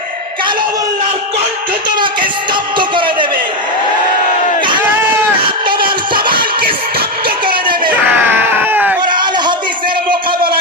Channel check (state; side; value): normal; both; correlation 0.08